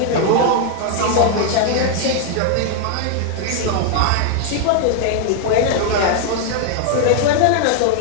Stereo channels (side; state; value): both; different; correlation 0.00